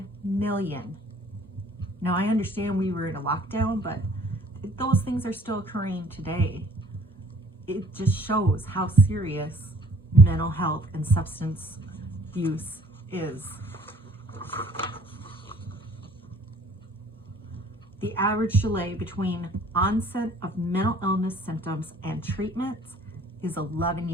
million. Now, I understand we were in a lockdown, but those things are still occurring today. It just shows how serious mental health and substance use is. The average delay between onset of mental illness symptoms and treatments is 11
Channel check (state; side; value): normal; both; correlation 0.55